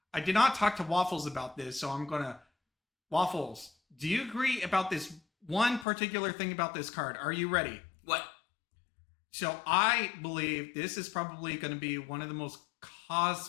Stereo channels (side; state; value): right; drops out; at 5.9 s